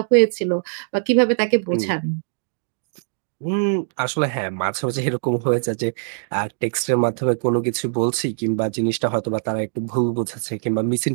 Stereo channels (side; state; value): left; silent; digital silence